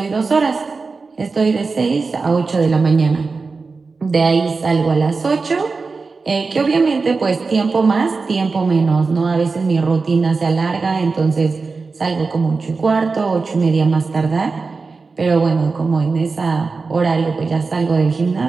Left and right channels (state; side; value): quieter; left; 4.3 dB